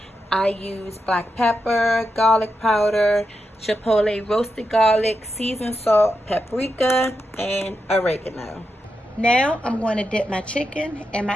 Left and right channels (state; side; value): normal; both; correlation 0.86